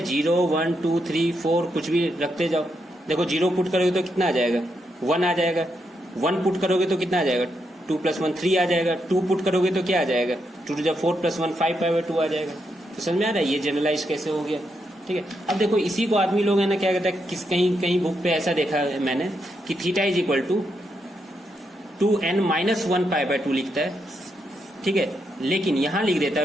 0 1 2 3 4 कुछ भी रखते जाओ। देखो 0 पुट करोगे तो कितना आ जाएगा 1 आ जाएगा, 1 पुट करोगे तो कितना आ जाएगा 2 + 1 3 आ जाएगा, 2 पुट करोगे तो क्या आ जाएगा 2 × 4 + 1 5π/2 आ जाएगा। तो समझ में आ रहा है ये जनरलाइज कैसे हो गया, ठीक है। अब देखो इसी को आदमी लोग है ना क्या कहता है, कहीं बुक पे ऐसा देखा है मैंने कि थीटा = 2n-1 π/2 लिखता है, ठीक है। लेकिन यहाँ लिख देता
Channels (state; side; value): normal; both; correlation 0.81